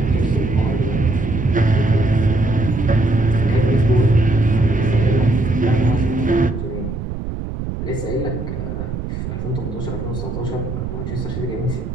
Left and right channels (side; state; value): right; noise; rumble, 6 dB below the sound